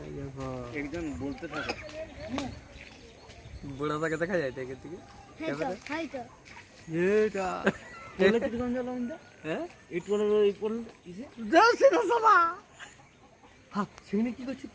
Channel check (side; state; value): both; identical; correlation 1.00